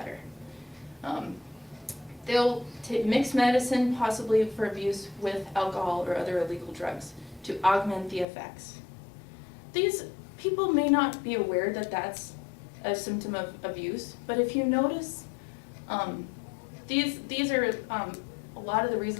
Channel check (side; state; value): right; drops out; at 8.2 s